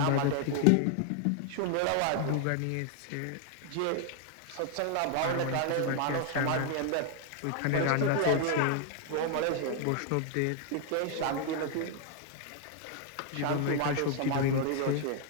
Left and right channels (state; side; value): different; both; correlation 0.00